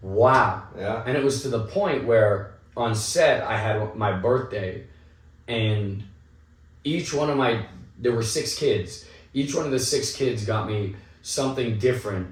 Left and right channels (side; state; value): both; identical; correlation 1.00